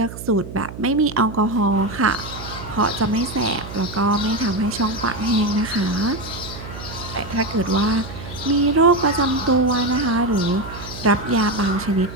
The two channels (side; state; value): right; noise; hum, 12 dB below the sound